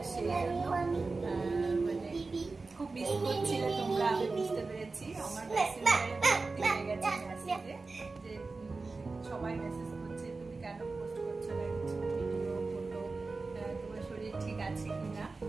সেই জন্য মানে খুব মিস করছিলে তোমরা, আমি বুঝতে পেরেছি। আমার মেসেঞ্জারে ভর্তি হয়ে গেছে মেসেজে যে সবাই মেসেজ করছে তুমি কেন পোস্ট করছো না কিছু ভিডিও ফটো, তোমার শরীর ঠিক আছে কিনা।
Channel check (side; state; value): left; quieter; 3.8 dB